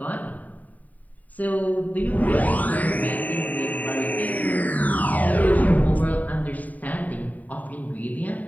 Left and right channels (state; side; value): late; right; 0.075 ms